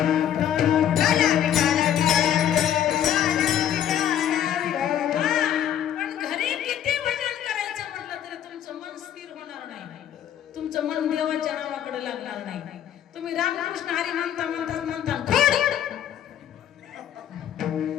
पण घरी किती भजन करायचं म्हटलं तरी तुमचं मन स्थिर होणार नाही, तुमचं मन देवाच्या नावाकडे लागणार नाही. तुम्ही रामकृष्ण हरी म्हणता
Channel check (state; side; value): quieter; right; 10.3 dB